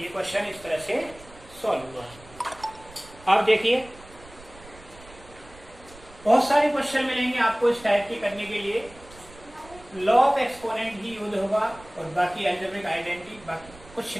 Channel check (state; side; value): noise; right; rumble, 21 dB below the sound